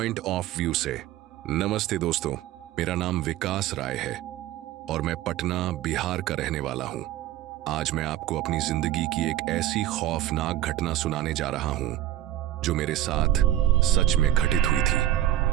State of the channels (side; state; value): left; quieter; 12.9 dB